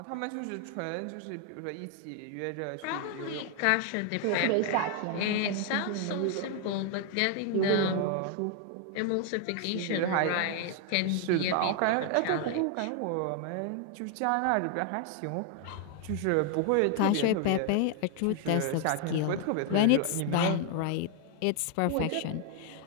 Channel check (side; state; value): both; different; correlation 0.00